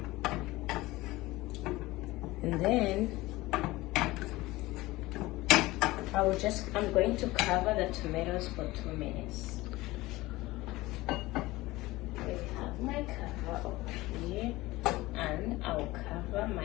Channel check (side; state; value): right; quieter; 19.4 dB